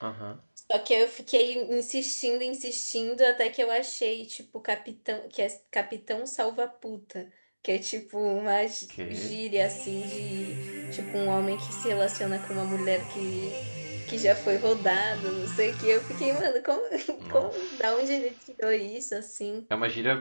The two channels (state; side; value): inverted; both; correlation -1.00